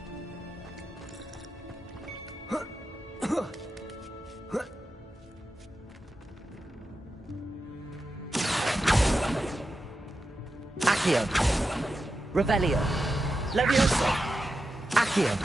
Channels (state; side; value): normal; both; correlation 0.90